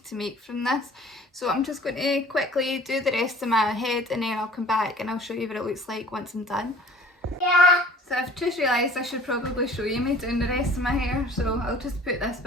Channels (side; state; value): both; normal; correlation 0.49